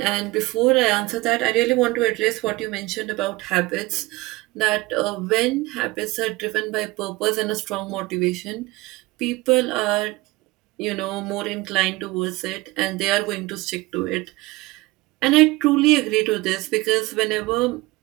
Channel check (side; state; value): left; quieter; 21.2 dB